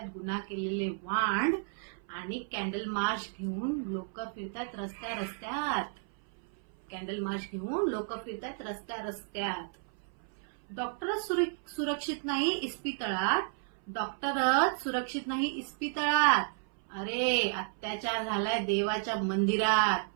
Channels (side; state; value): left; silent; 56 dB below the other